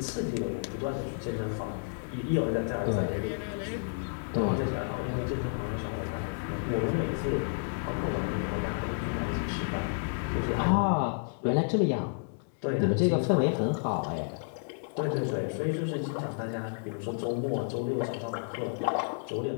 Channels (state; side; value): silent; right; digital silence